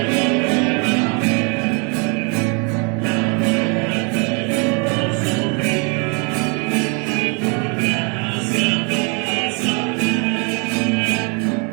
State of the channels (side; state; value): left; quieter; 34.8 dB